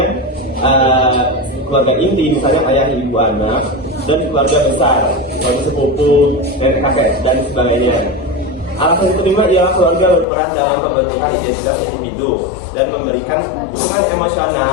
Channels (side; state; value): right; drops out; at 10.2 s